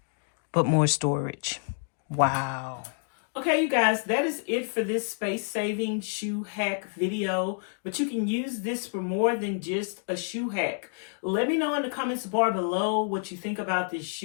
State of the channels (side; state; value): right; silent; digital silence